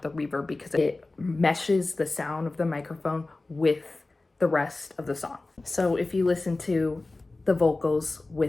the reverb because it meshes the sound of the microphone with the rest of the song. So if you listen to the vocals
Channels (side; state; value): right; quieter; 3.2 dB